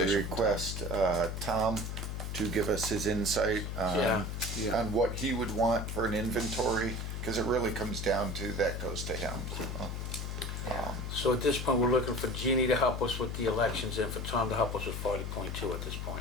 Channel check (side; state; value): left; noise; hum, 4 dB below the sound